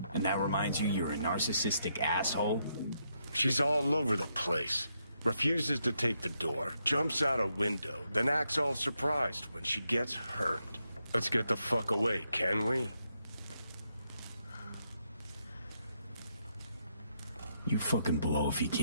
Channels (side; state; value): both; inverted; correlation -0.79